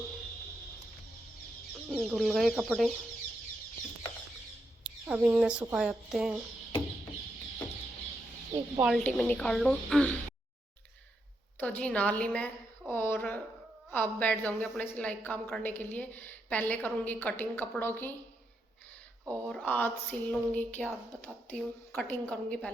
धुल गए कपड़े, अब इन्हें सुखा जाते हैं, एक बाल्टी में निकाल लूँ। तो जी नहा ली मैं, और अब बैठ जाऊंगी अपने सिलाई काम करने के लिए। पहले करूंगी कटिंग कपड़ों की, और आज सिल लूँगी क्या बताती हूँ। कटिंग करूँगी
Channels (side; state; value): both; normal; correlation 0.82